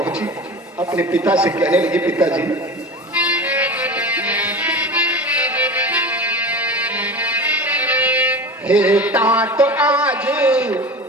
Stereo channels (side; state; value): both; normal; correlation 0.31